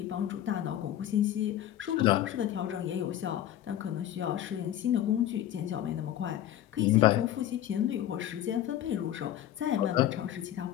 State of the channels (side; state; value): right; quieter; 12.0 dB